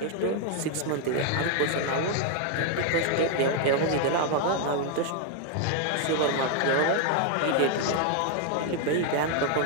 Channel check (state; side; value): different; both; correlation 0.00